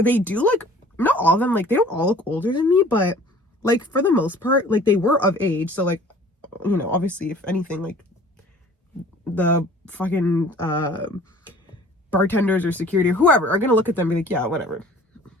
do, like, not all of them, like they don't all look older than me, but like for the most part, like they were of age. So like, you know, obviously if anything, like the fucking bartenders or security or whoever are gonna look at them and be like, yeah, whatever,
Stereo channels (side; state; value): both; normal; correlation 0.49